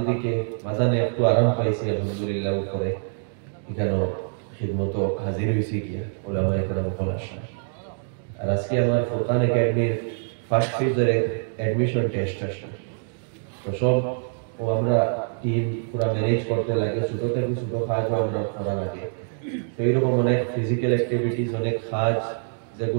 দিকে মাঝানে একটু আরাম পাইছি আলহামদুলিল্লাহ, উপরে এখানে খিদমত হাজির হয়েছি গিয়া ওলামা একরাম বল আসা। আর আজকে আমার ফুরকান একাডেমির ফার্স্ট ফেজের অ্যাডমিশন টেস্ট আসলো। তো সব ও আমরা টিম পুরো ম্যানেজ করতে লাগে, ছোট থেকে ছোট কাজও আমরা করা লাগে। তো এইরকম অনেক ফিজিক্যাল অ্যাক্টিভিটিস, অনেক কাজ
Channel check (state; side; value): silent; left; digital silence